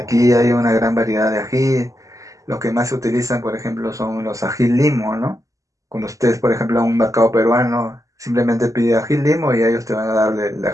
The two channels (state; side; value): late; left; 0.16 ms